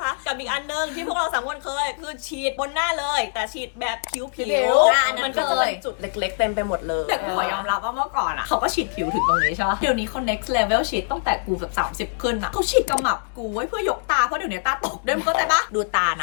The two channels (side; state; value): right; silent; digital silence